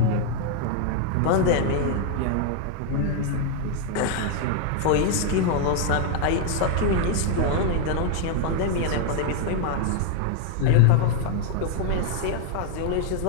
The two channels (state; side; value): different; both; correlation 0.00